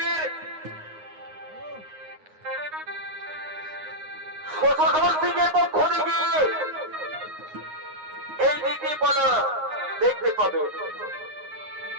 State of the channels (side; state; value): left; late; 9.6 ms